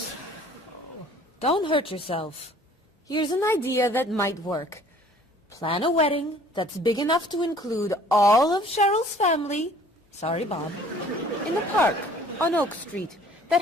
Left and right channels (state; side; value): normal; both; correlation 0.53